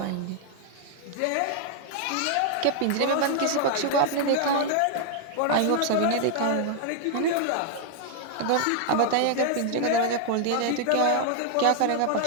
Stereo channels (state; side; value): different; both; correlation 0.00